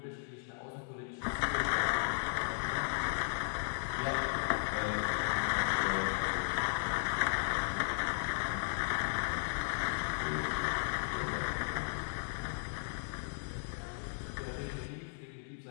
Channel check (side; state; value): right; silent; digital silence